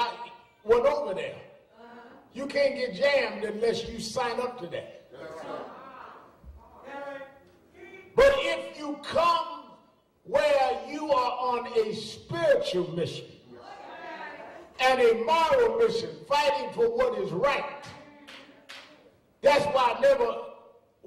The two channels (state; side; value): identical; both; correlation 1.00